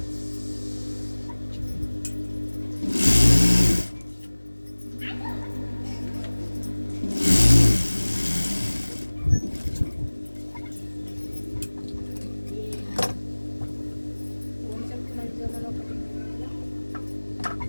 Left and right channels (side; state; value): both; inverted; correlation -1.00